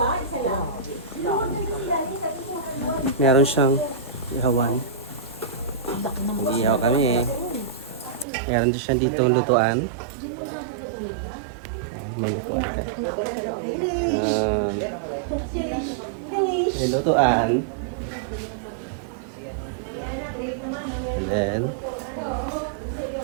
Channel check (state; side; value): drops out; left; at 8.2 s